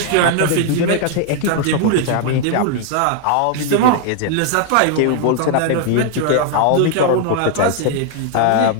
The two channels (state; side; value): different; both; correlation 0.00